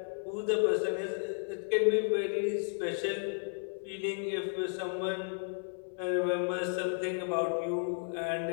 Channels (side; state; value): right; silent; digital silence